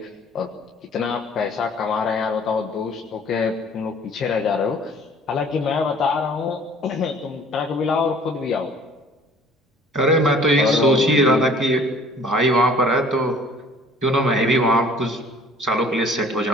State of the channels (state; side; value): normal; both; correlation 0.52